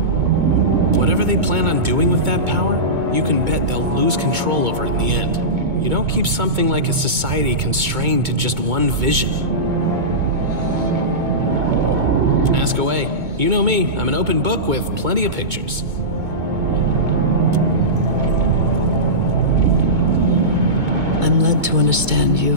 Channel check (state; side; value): late; left; 2.2 ms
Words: Whatever they plan on doing with that power, you can bet they'll lose control over it in the end. You don't keep something like a society constrained to just one vision. Ask away. You know me, I'm an open book with plenty of pictures. I'm led to understand